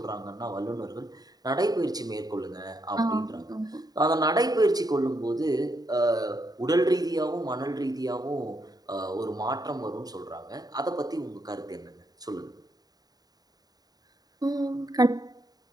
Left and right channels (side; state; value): left; late; 0.18 ms